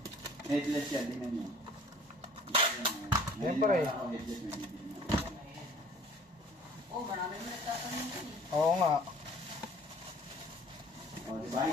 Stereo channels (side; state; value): both; normal; correlation 0.52